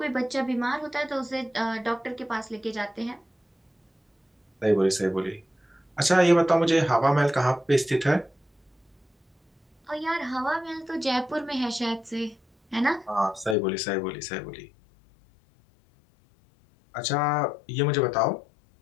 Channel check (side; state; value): right; drops out; at 13.6 s